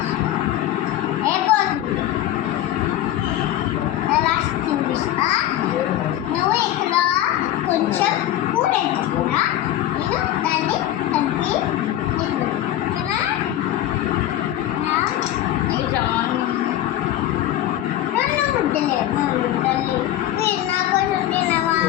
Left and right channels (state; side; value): quieter; right; 13.0 dB